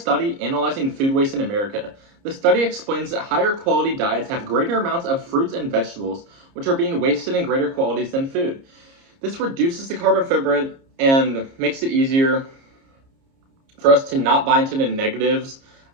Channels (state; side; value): late; left; 30 ms